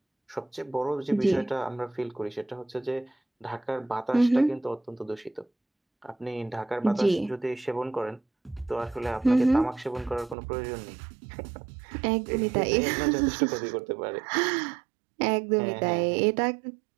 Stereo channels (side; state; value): left; drops out; at 10.4 s